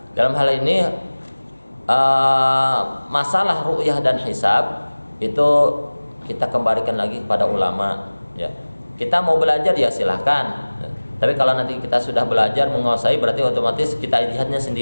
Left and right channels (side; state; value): both; inverted; correlation -1.00